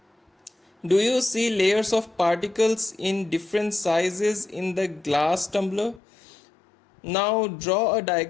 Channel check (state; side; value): drops out; right; at 6.0 s